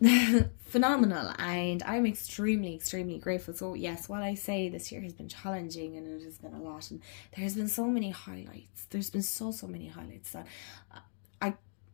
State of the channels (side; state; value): right; silent; 55 dB below the other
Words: phenomenal, and I'm extremely grateful. So yes, while I say this year has been challenging and it has been a lot, and there's been so many highlights, there's been so many highlights that I